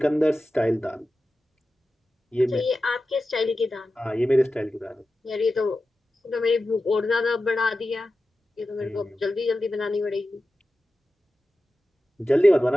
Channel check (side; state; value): both; normal; correlation 0.93